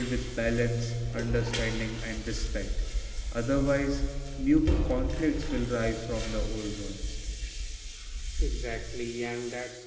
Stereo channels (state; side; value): identical; both; correlation 1.00